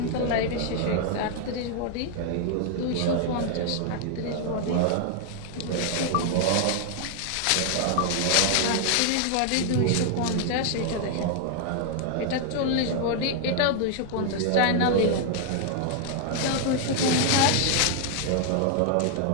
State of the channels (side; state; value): both; different; correlation 0.00